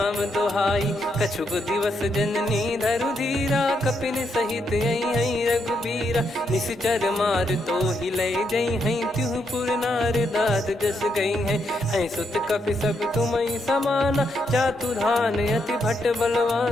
दोहाई। कछुक दिवस जननी धरु धीरा, कपिन सहित यही रघुबीरा। निशिचर मार तो ही ले जई हैं, त्युह पुर नार दाद जस गई हैं। सुत कपि सब तुमहि समाना, जातु धान अति भट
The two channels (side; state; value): both; normal; correlation 0.79